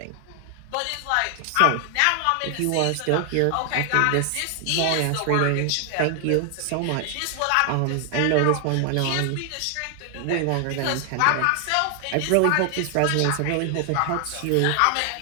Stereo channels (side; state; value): both; different; correlation 0.00